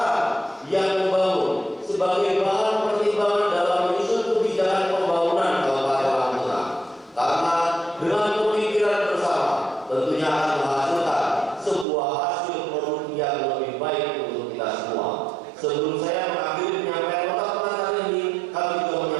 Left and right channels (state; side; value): drops out; left; at 11.9 s